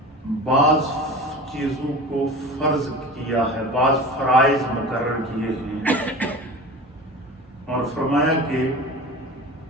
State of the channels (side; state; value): both; normal; correlation 0.35